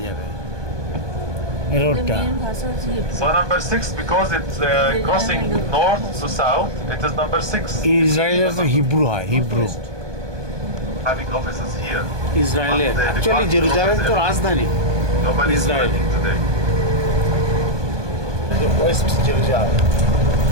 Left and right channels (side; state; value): left; late; 1.2 ms